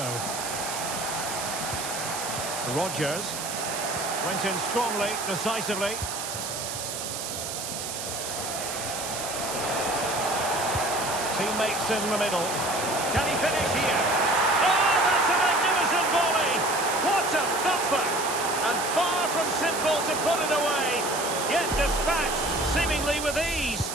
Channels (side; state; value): right; noise; hiss, 5 dB below the sound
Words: Rodgers went in strongly, decisively. Teammates in the middle. Can he finish here? Oh, that's a magnificent volley! What a thumper! And far from simple to put it away, yet dispatched seemingly with ease.